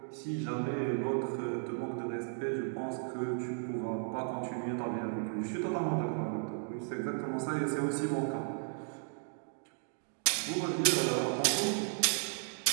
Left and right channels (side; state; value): left; silent; digital silence